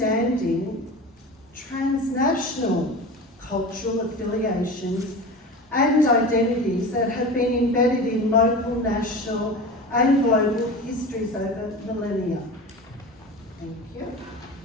transnational cultural affiliations and identities that have been embedded in local, national, and global histories over millennia. Thank you.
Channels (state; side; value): normal; both; correlation 0.32